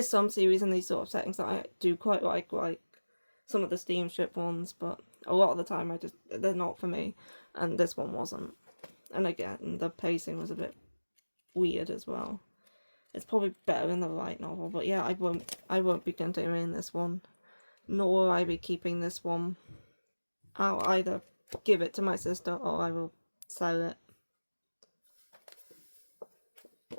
some series in these sort of settings that I do quite like some of the steamship ones, but a lot of the time they're not for me, and this one wasn't. And again, the pacing was a bit weird as well. It's probably better in the light novel, but yeah, I won't be continuing this one, nor will I be keeping this one. I'll either give it to my sister or I will sell it.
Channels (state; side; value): inverted; both; correlation -1.00